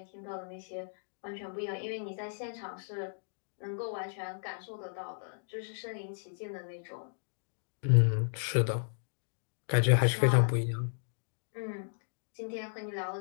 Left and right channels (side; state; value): right; silent; digital silence